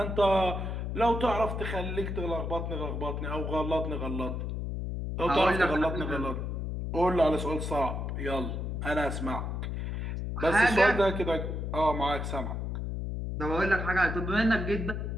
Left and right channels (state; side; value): noise; left; hum, 3 dB below the sound